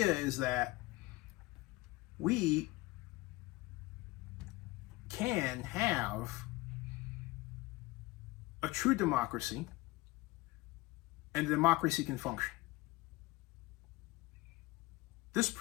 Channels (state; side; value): quieter; right; 20.5 dB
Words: is that we can have a true democracy, and democracy can function. This